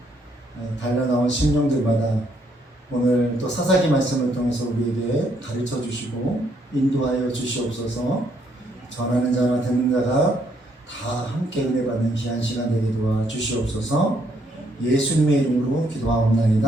달려나온 심령들마다 오늘 또 사사기 말씀을 통해서 우리에게 가르쳐 주시고 인도하여 주시옵소서. 전하는 자와 듣는 자가 다 함께 은혜 받는 귀한 시간 되게 도와 주시옵소서. 예수님의 이름으로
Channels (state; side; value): normal; both; correlation 0.71